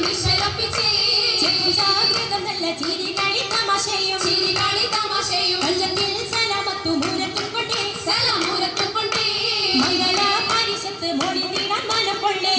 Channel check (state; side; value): identical; both; correlation 1.00